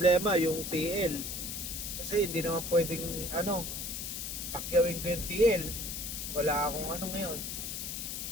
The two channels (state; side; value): noise; left; hiss, 5 dB below the sound